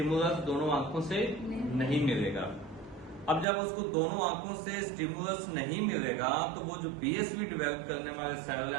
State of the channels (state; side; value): drops out; left; at 3.5 s